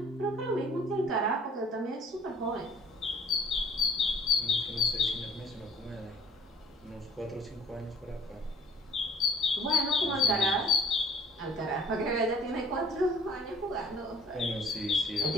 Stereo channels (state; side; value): normal; both; correlation 0.54